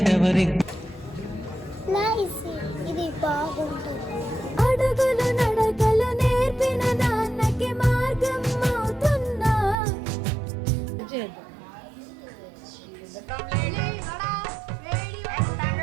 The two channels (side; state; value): left; drops out; at 9.8 s